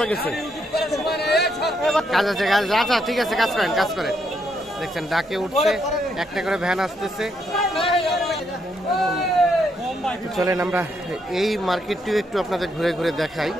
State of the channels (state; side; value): normal; both; correlation 0.76